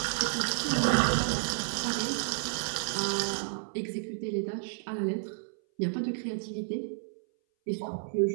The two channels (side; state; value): left; silent; 57 dB below the other